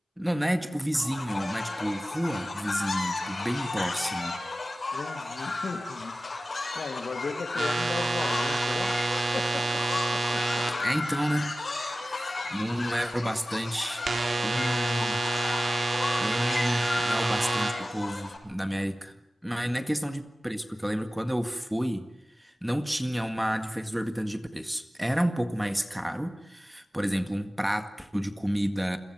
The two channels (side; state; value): both; normal; correlation 0.96